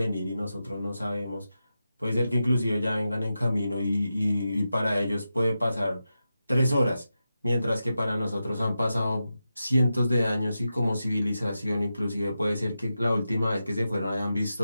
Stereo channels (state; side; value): inverted; both; correlation -0.90